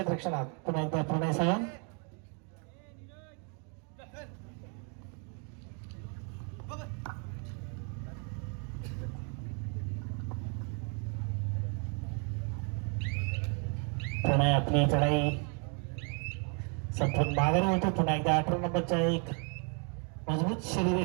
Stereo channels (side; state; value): left; quieter; 38.9 dB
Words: पुन्हा एकदा प्रणय सावंत. प्रणय आपली चढाई संपूर्ण माघारी होतो. पुन्हा एकदा 18 नंबरचा एक मजबूत